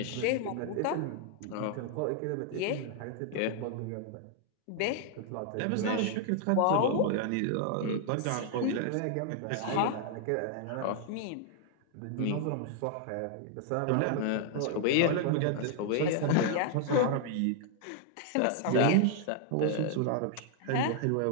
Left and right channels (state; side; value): different; both; correlation 0.00